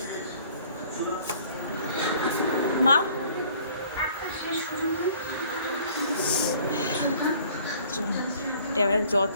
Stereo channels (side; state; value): both; inverted; correlation -0.54